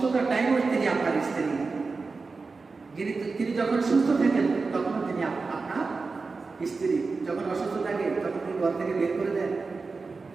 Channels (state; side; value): quieter; left; 4.2 dB